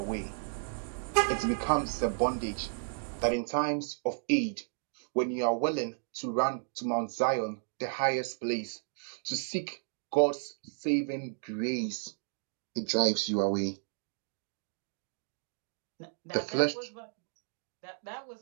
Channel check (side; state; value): left; silent; digital silence